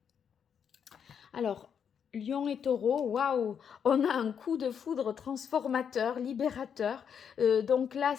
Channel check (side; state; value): right; quieter; 7.6 dB